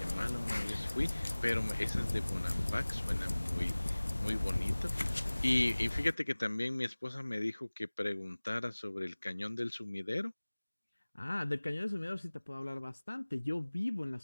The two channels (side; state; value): both; inverted; correlation -1.00